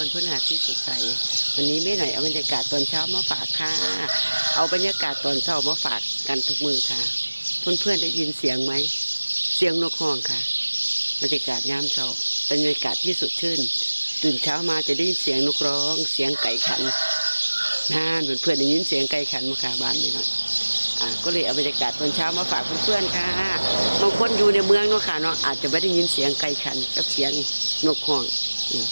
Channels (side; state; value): both; inverted; correlation -1.00